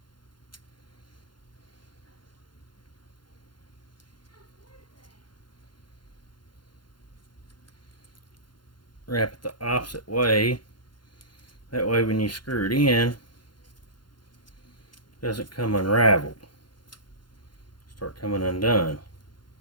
Wrap it the opposite way. That way when you screw it in, it doesn't come unraveled. Start coming undone.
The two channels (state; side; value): late; right; 0.71 ms